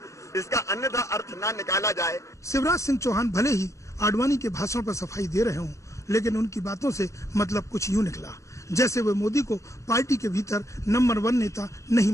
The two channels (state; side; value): late; right; 0.15 ms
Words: इसका अन्यथा अर्थ ना निकाला जाए। शिवराज सिंह चौहान भले ही आडवाणी के भाषण पर सफाई दे रहे हों, लेकिन उनकी बातों से मतलब कुछ यूं निकला जैसे वे मोदी को पार्टी के भीतर नंबर 1 नेता नहीं